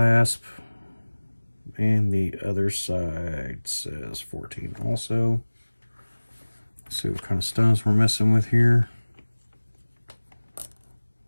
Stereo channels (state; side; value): inverted; both; correlation -1.00